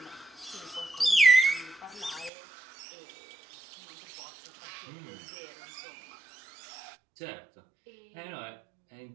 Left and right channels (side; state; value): left; drops out; at 2.3 s